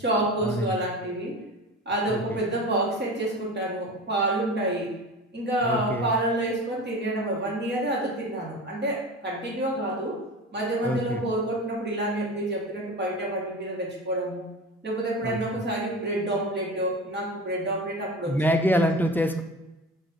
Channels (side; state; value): both; normal; correlation 0.31